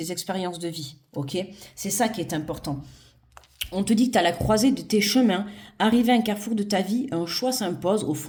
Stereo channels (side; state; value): both; identical; correlation 1.00